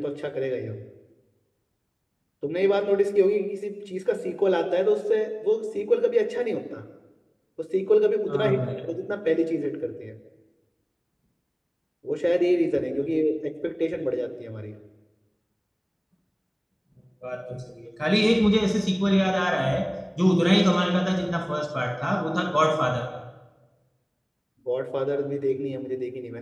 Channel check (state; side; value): identical; both; correlation 1.00